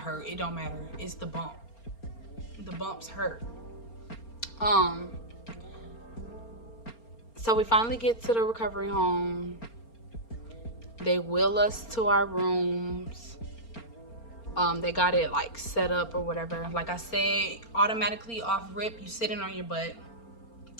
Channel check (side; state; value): right; late; 4.3 ms